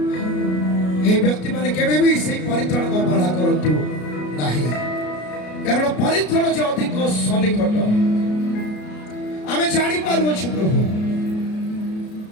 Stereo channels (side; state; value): right; late; 33 ms